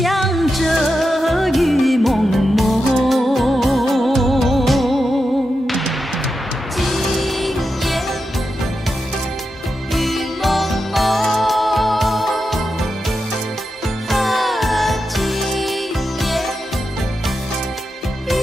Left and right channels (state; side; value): normal; both; correlation 0.88